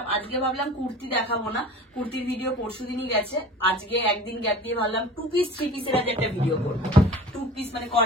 আজকে ভাবলাম কুর্তি দেখাবো না, কুর্তির ভিডিও পরশু দিনই গেছে। আজকে একদিন গ্যাপ দিয়ে ভাবলাম 2 পিস 3 পিসের আজ একটা ভিডিও করবো। 2 পিস মানে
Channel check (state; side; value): normal; both; correlation 0.39